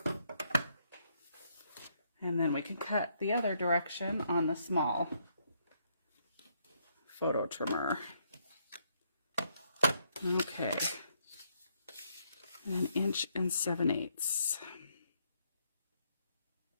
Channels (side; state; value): both; inverted; correlation -0.73